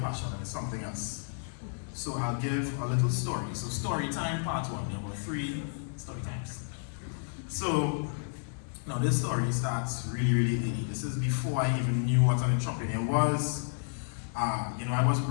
and it's something else. So I'll give a little story. So story time part 1, there were 3 story times. So now this story starts really, really early. This is before I even knew what an entrepreneur was. I was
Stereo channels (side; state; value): right; silent; digital silence